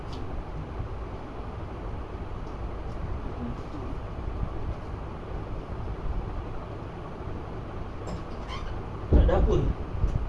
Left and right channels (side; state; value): both; identical; correlation 1.00